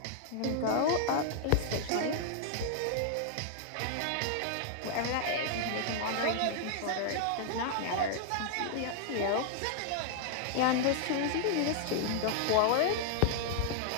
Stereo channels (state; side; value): different; both; correlation -0.01